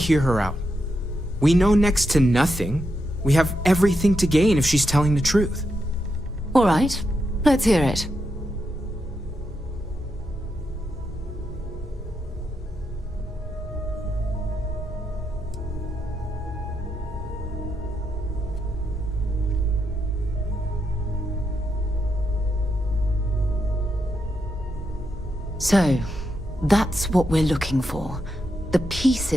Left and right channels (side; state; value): both; normal; correlation 0.84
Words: her out? We know next to nothing. We have everything to gain if she's telling the truth. All right, let's hear it. So, that's what we're looking for. The